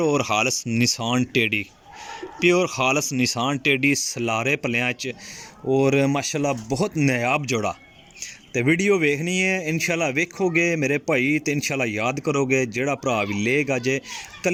और खालस निशान टेडी, प्योर खालस निशान टेडी सलारे पलियां च, और माशाल्लाह बहुत नायाब जोड़ा। तो वीडियो वेखनी है इंशाल्लाह, वेखोगे मेरे भाई तो इंशाल्लाह याद करोगे। जेड़ा भरा भी लेगा जे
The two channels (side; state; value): both; identical; correlation 1.00